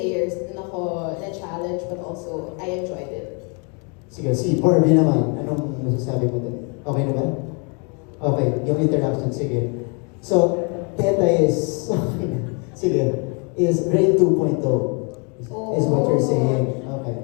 dun ako na-challenge, but also, I enjoyed it. Sige, si Barbie naman, anong masasabi mo doon? Okay na ba? Okay, yung interaction, sige. So, Peta is, sige, is Rain 2.0 is what you're saying. Okay.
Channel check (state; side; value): quieter; right; 35.3 dB